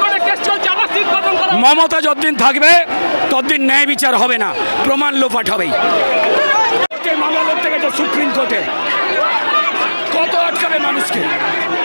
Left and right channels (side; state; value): both; inverted; correlation -1.00